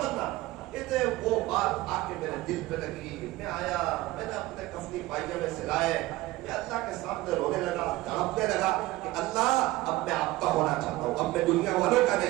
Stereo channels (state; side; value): quieter; left; 18.3 dB